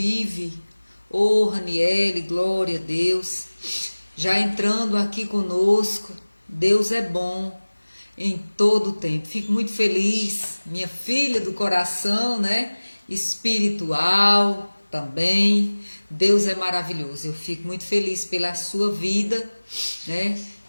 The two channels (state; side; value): inverted; both; correlation -1.00